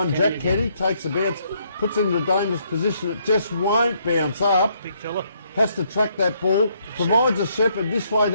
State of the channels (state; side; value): inverted; both; correlation -0.71